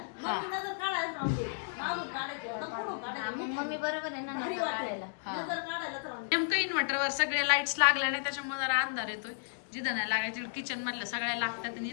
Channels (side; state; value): right; silent; digital silence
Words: काढायला राहून दे मागून काढायचे पुढून काढायचे भारी वाटायला नजर काढायलाच राहून दे. नेमकं इन्व्हर्टरवर सगळे लाईट्स लागल्या नाही त्याच्यामुळे जरा अंधार येतोय जिथं नाही लागायची किचन मधल्या सगळ्या लागतात आणि